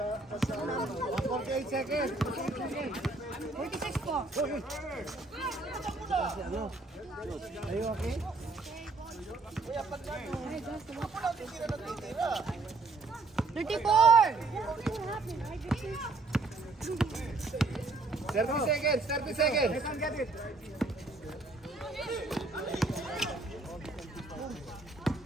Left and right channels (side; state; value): left; quieter; 3.5 dB